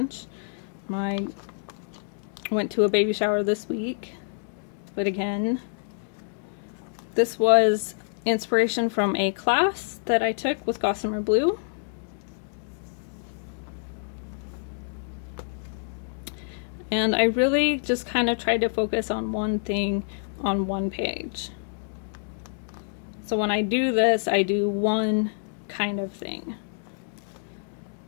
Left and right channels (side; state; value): right; silent; digital silence